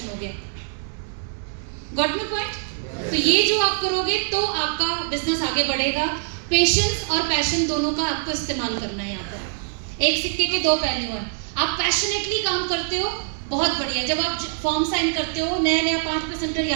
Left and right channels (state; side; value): silent; left; digital silence